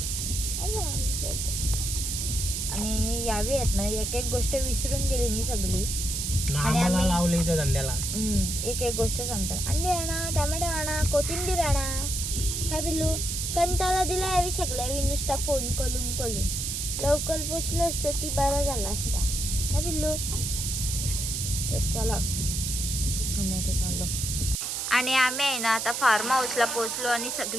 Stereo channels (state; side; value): noise; right; hiss, 2 dB below the sound